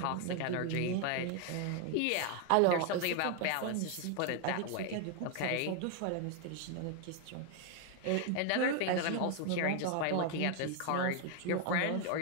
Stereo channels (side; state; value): both; different; correlation 0.01